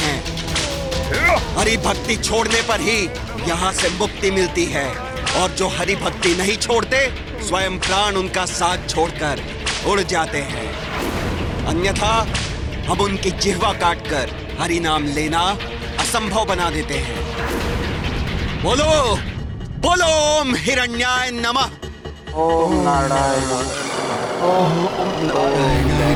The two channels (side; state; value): both; identical; correlation 1.00